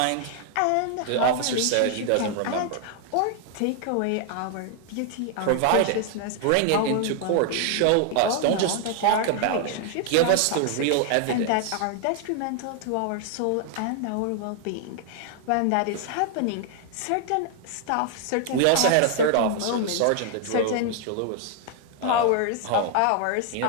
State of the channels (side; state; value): both; different; correlation 0.00